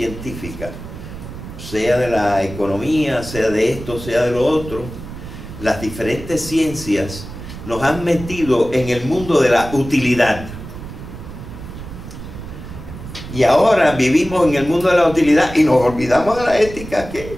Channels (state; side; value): noise; right; rumble, 12 dB below the sound